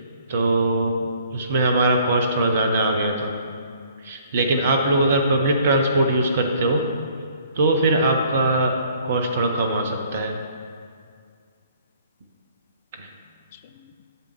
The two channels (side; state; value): both; inverted; correlation -0.59